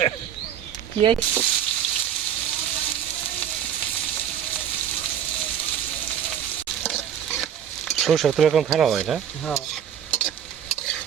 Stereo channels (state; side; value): quieter; left; 9.4 dB